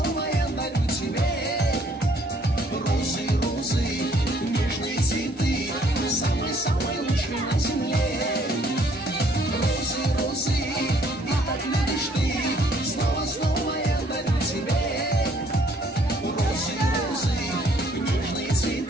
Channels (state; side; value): normal; both; correlation 0.63